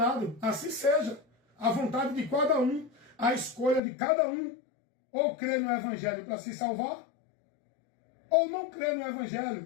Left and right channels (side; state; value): right; drops out; at 3.8 s